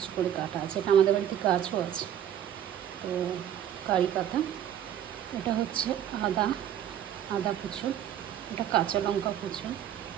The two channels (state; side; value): quieter; left; 10.3 dB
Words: করে কাটা আছে। এটা আমাদের বাড়িতে গাছও আছে। তো কারি পাতা, এটা হচ্ছে আদা, আদা কুচো, এটা কাঁচা লঙ্কা কুচো,